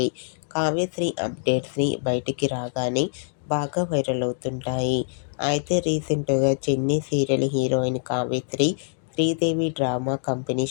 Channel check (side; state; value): right; silent; digital silence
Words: కావ్యశ్రీ అప్డేట్స్ని బయటికి రాగానే బాగా వైరల్ అవుతుంటాయి. అయితే రీసెంట్గా చెన్నీ serial heroine Kavyasri Sridevi drama company